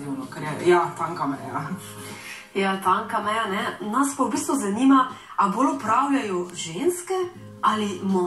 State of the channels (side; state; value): both; identical; correlation 1.00